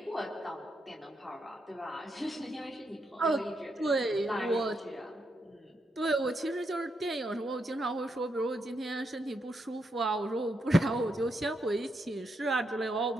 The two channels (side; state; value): both; normal; correlation 0.81